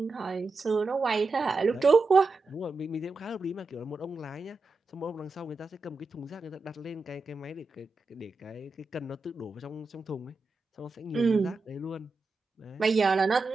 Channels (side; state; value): left; quieter; 3.5 dB